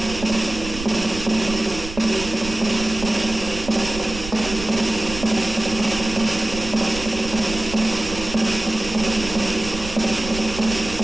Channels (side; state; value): right; noise; rumble, 10 dB below the sound